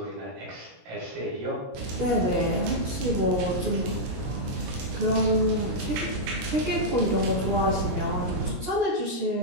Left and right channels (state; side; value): late; left; 17 ms